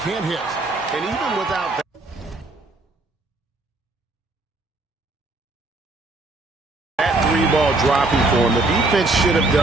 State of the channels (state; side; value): quieter; left; 3.0 dB